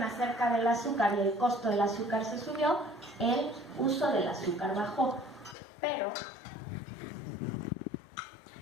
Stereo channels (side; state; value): right; drops out; at 5.6 s